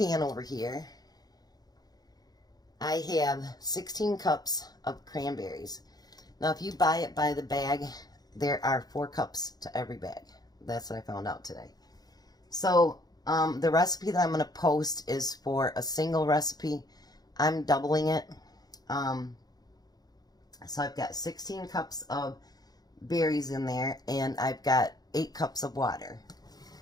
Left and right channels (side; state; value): right; late; 0.19 ms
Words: over here, I have 16 cups of cranberries. Now if you buy it by the bag, there are 4 cups to every bag. That's what I found out today. So the recipe that I'm going to post is for a single recipe. I'm doubling it. So I've got 16 cups of berries in there, and I've got 8 cups of water.